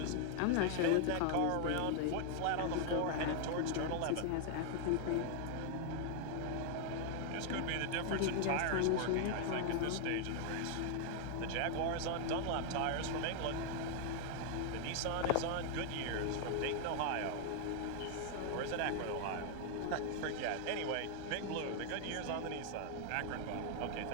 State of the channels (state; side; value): different; both; correlation 0.00